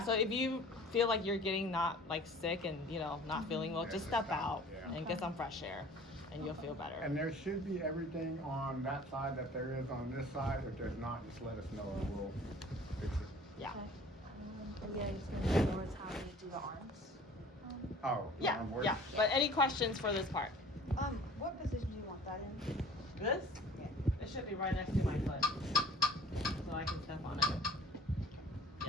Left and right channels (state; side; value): normal; both; correlation 0.48